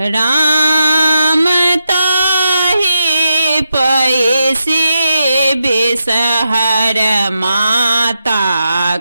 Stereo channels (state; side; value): inverted; both; correlation -0.87